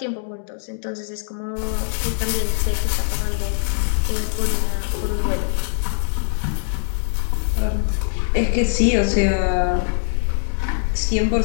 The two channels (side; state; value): right; silent; digital silence